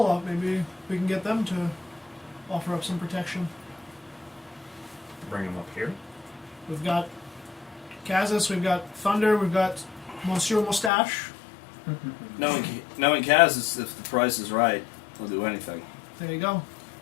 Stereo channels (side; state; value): right; drops out; at 10.9 s